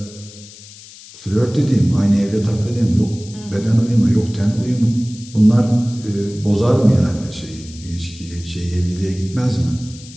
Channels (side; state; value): left; noise; hiss, 19 dB below the sound